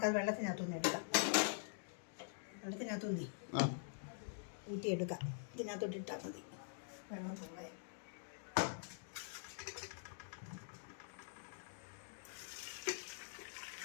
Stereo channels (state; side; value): silent; right; digital silence